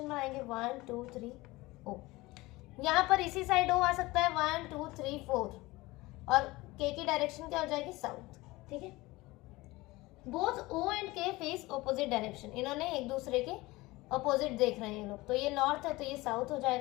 में आएंगे 1 2 3 ओ। यहाँ पर इसी साइड ओ आ सकता है 1 2 3 4 और के की डायरेक्शन क्या हो जाएगी साउथ। ठीक है, बोथ ओ एंड के फेस ऑपोजिट डायरेक्शन, इन्होंने एक दूसरे के ऑपोजिट देख रहे हैं ये लोग, तो ये नॉर्थ है तो ये साउथ हो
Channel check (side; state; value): right; quieter; 20.7 dB